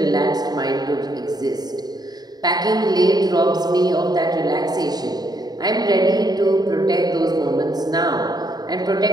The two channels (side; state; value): left; late; 0.19 ms